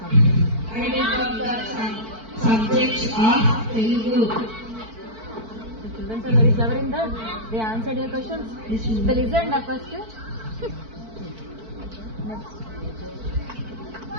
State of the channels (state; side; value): late; left; 4.5 ms